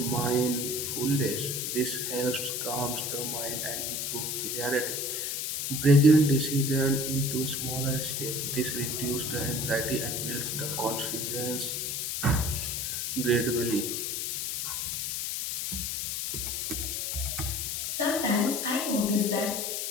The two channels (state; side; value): noise; left; hiss, 2 dB below the sound